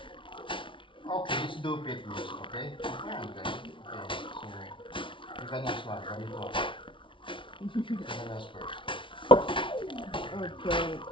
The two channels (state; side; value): late; right; 0.25 ms